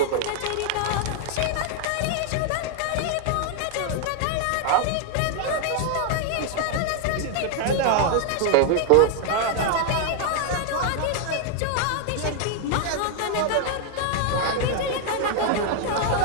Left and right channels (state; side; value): different; both; correlation 0.00